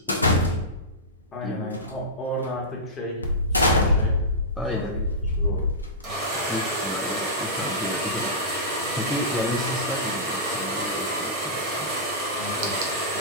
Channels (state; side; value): normal; both; correlation -0.17